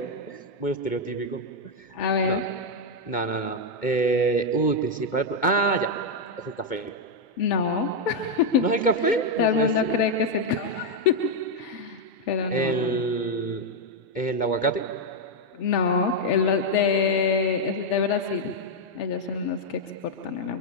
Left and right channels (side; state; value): right; late; 2.2 ms